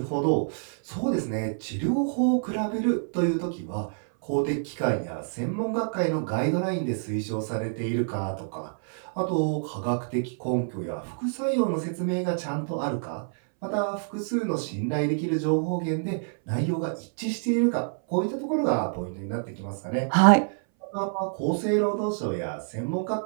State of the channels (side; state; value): left; silent; 60 dB below the other